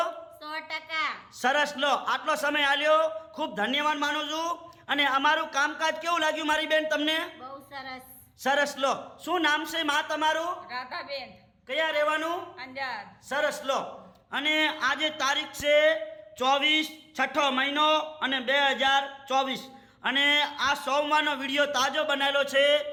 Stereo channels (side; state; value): both; identical; correlation 1.00